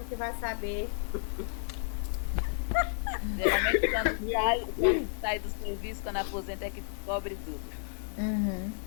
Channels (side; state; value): right; silent; 57 dB below the other